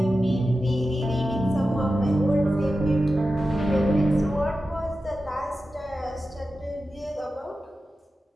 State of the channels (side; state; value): both; normal; correlation 0.92